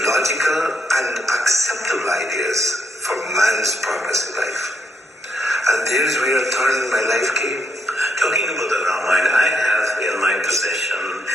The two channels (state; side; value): normal; both; correlation 0.76